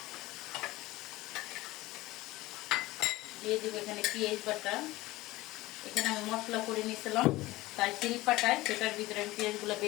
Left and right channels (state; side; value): quieter; right; 18.9 dB